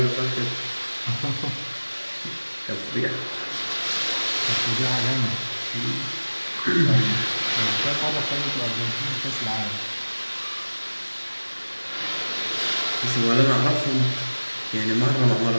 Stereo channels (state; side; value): inverted; both; correlation -1.00